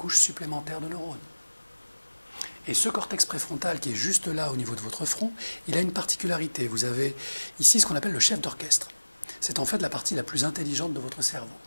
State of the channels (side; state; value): both; inverted; correlation -1.00